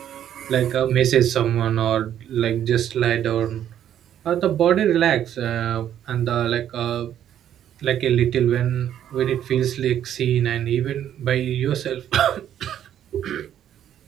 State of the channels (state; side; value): quieter; left; 10.5 dB